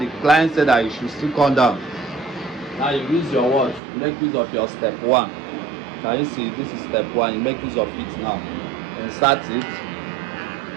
client said that you should still come down. Now you use your what? Make use of your step 1. Can you see? This is step 1. You make use of it now. Insert it.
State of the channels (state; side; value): drops out; left; at 3.8 s